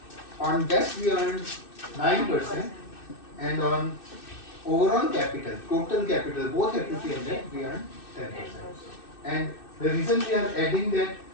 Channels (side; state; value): right; late; 2.6 ms